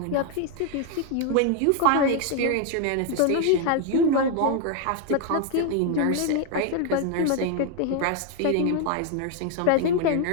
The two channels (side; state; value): both; different; correlation 0.01